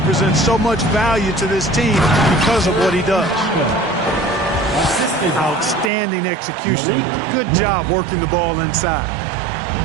so much value to this team because of what he does. Outstanding execution. Good job working the ball inside.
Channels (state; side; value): drops out; left; at 5.9 s